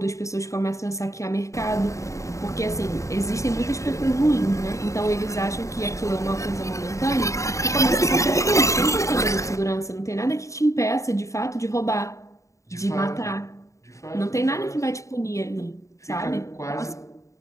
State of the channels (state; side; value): late; right; 0.15 ms